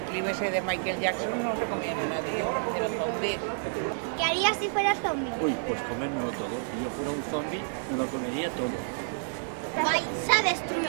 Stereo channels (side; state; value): left; silent; digital silence